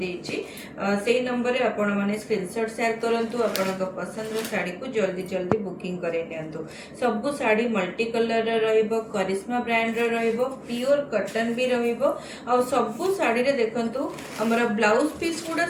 सेही नंबर रे आपण माने स्क्रीनशॉट शेयर करंतु। आपनका पसंद रो साड़ी को जल्दी जल्दी बुकिंग करे नियंतु। सब साड़ी मल्टी कलर रे रहइबो, करिश्मा ब्रांड रे रहइबो, प्योर कॉटन भी रहइबो। आ सब साड़ी रे देखंतु हमर ब्लाउज पीस गुडा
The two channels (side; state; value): both; identical; correlation 1.00